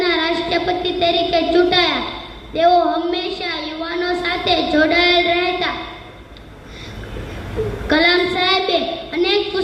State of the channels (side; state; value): both; identical; correlation 1.00